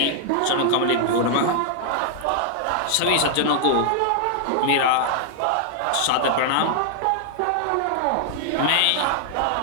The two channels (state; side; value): different; both; correlation 0.00